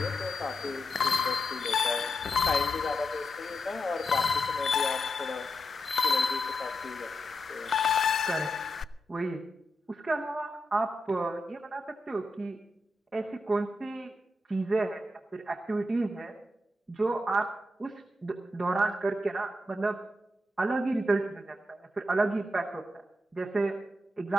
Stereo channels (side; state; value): both; normal; correlation 0.86